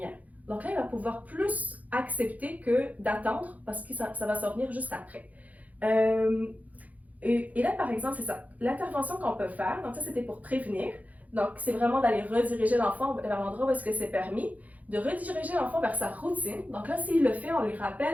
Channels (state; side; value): late; left; 0.076 ms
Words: Donc là, il va pouvoir plus accepter que d'attendre parce que ça va s'en venir juste après. Et là, par exemple, c'est ça. L'intervention qu'on peut faire, donc ça, c'était pour prévenir. Donc, c'est vraiment d'aller rediriger l'enfant vers l'endroit où est-ce que c'est permis, de rediriger l'enfant vers sa routine. Donc là, s'il le fait, on lui